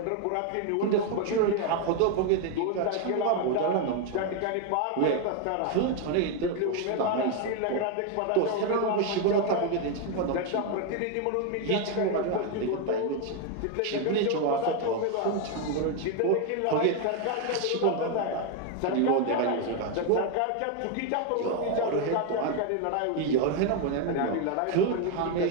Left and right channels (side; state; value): both; different; correlation 0.01